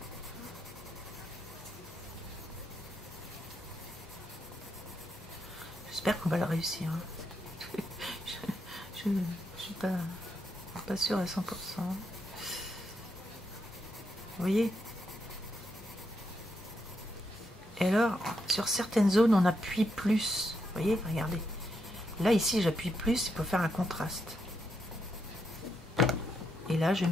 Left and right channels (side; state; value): both; normal; correlation 0.81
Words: J'espère qu'on va le réussir. Je ne suis pas sûre à 100%. voyez? Et alors, sur certaines zones, on appuie plus. Vous voyez, regardez. Là, ici, j'appuie plus pour faire un contraste. Et là, je